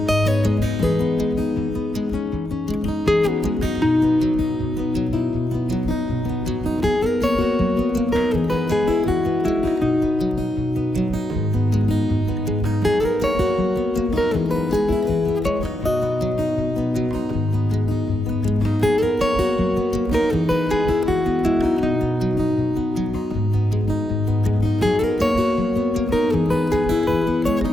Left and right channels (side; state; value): both; normal; correlation 0.83